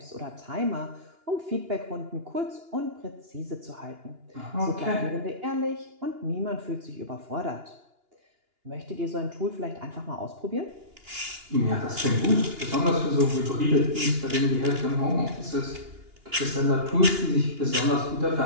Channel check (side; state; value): left; late; 2.8 ms